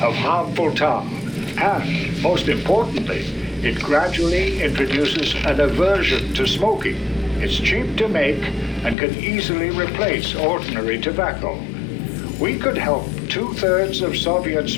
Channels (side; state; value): right; drops out; at 9.0 s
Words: of harmful tar. And, most importantly, it gradually introduces an aversion to smoking. It's cheap to make and can easily replace ordinary tobacco. We could help 2/3 of Soviet